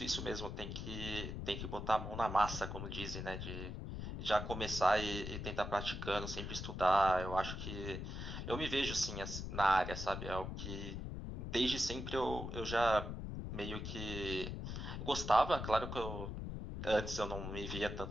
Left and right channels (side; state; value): left; noise; rumble, 5 dB below the sound